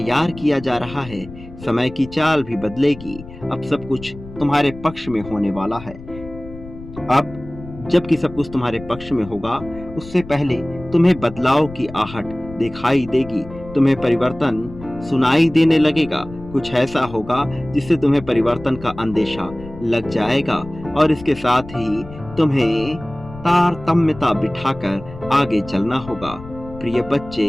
किया जा रहा है। समय की चाल भी बदलेगी। अब सब कुछ तुम्हारे पक्ष में होने वाला है। अब जबकि सब कुछ तुम्हारे पक्ष में होगा, उससे पहले तुम्हें बदलाव की आहट दिखाई देगी, तुम्हें परिवर्तन सुनाई देने लगेगा। कुछ ऐसा होगा जिससे तुम्हें परिवर्तन का अंदेशा लग जाएगा और इसके साथ ही तुम्हें तारतम्यता बिठाकर आगे चलना होगा। प्रिय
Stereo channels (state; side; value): noise; left; rumble, 16 dB below the sound